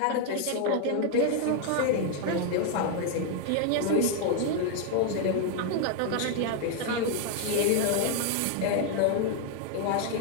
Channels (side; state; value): both; different; correlation 0.00